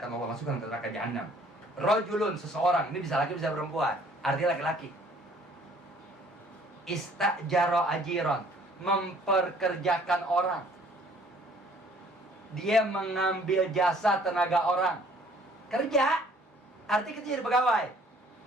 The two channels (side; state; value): both; normal; correlation 0.57